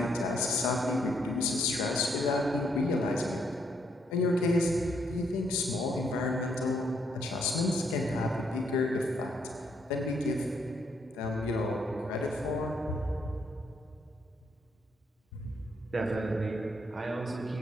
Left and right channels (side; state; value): both; normal; correlation 0.73